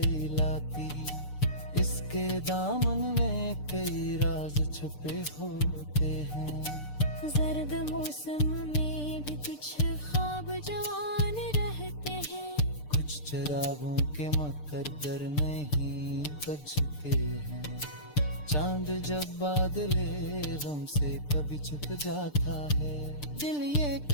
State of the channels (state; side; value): late; right; 6.7 ms